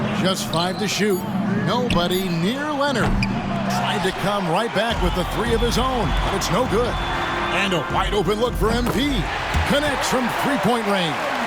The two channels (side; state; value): both; identical; correlation 1.00